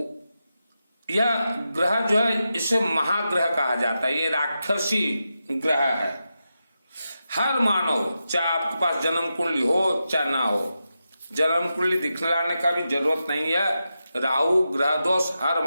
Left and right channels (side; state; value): both; inverted; correlation -0.89